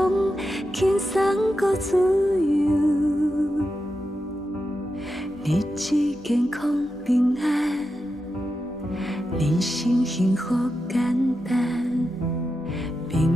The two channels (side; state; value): both; normal; correlation 0.89